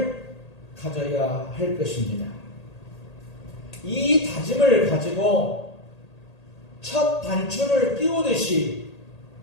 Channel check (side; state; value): right; late; 1.8 ms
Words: 가져야 할 것입니다. 이 다짐을 가지고 첫 단추를 끼우듯이